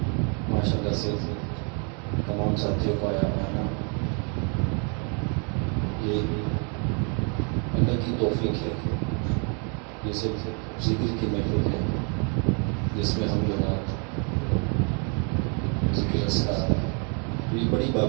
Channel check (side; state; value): left; quieter; 37.5 dB